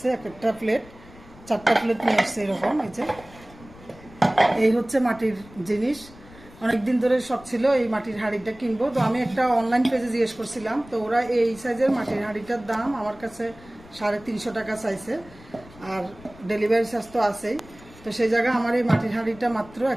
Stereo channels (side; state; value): left; noise; rumble, 21 dB below the sound